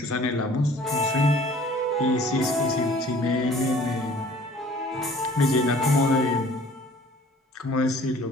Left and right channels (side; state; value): both; normal; correlation 0.51